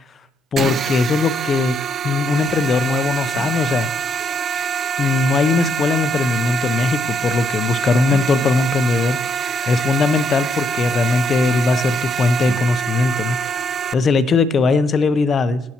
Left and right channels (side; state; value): both; normal; correlation 0.75